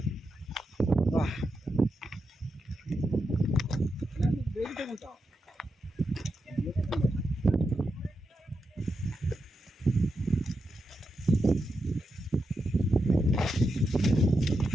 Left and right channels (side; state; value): both; normal; correlation 0.87